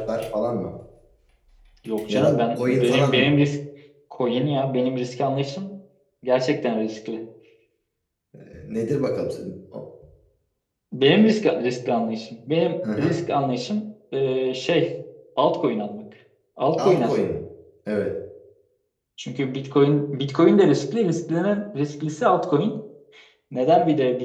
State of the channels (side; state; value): both; identical; correlation 1.00